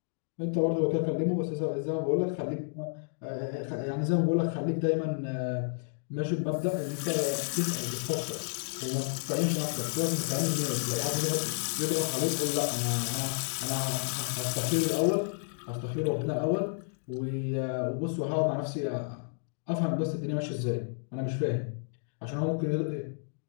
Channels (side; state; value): right; silent; digital silence